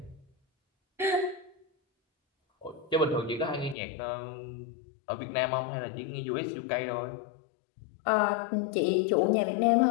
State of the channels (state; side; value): drops out; right; at 3.8 s